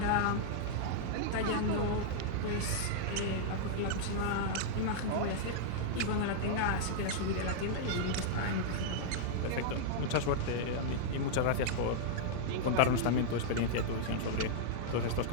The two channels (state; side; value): different; both; correlation -0.01